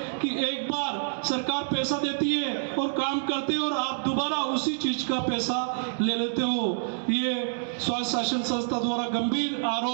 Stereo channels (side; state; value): left; silent; 60 dB below the other